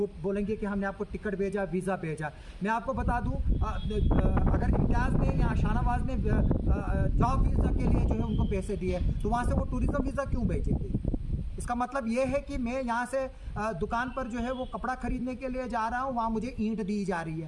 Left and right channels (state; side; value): identical; both; correlation 1.00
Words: बोलेंगे कि हमने आपको टिकट भेजा, वीज़ा भेजा। मैं आपको बता दूँ, अगर इम्तियाज़ ने या शाहनवाज ने जॉब वीज़ा के लिए जो है उनको पैसे दिए तो वहाँ से वो टूरिज़्म वीज़ा क्यों भेजेंगे? इसका मतलब ये है कि मैं यहाँ से दुकान पर जो है वो कपड़ा खरीदने के लिए जा रहा हूँ, वहाँ मुझे ईंट दी जा रही